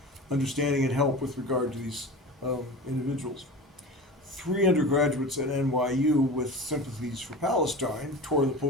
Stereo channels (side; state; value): both; normal; correlation 0.32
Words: understanding and help with regard to these individuals. 3 undergraduates at NYU with sympathies for Palestine tore the